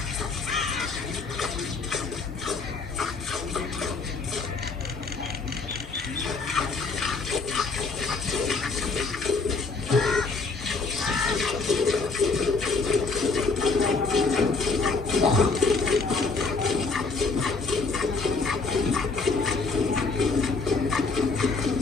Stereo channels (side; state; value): right; quieter; 4.1 dB